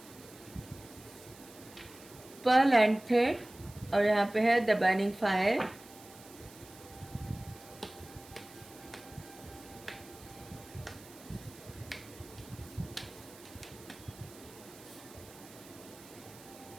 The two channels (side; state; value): right; noise; hiss, 20 dB below the sound